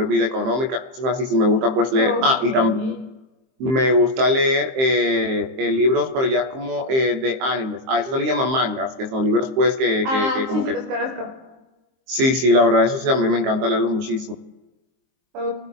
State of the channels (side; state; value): left; late; 23 ms